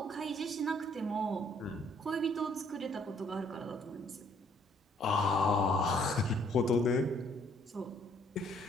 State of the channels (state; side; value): normal; both; correlation 0.64